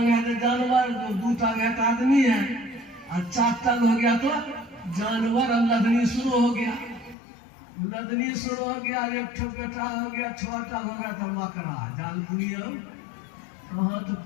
है तो जानवर, 2 टांग है तो आदमी है, और 4 टांग हो गया तो जानवर। अब लदनी शुरू हो गया, लदनी शुरू हो गया, एक ठो बेटा हो गया, 6 टांग हो गया तो मकरा जाल बुनिया। कहाँ तो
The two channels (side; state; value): right; drops out; at 7.2 s